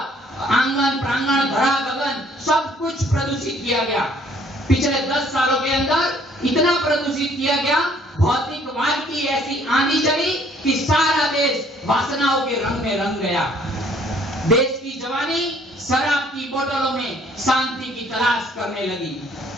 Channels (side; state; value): both; normal; correlation 0.61